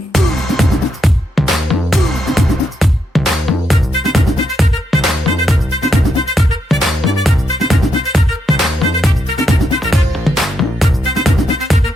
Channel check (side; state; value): both; normal; correlation 0.81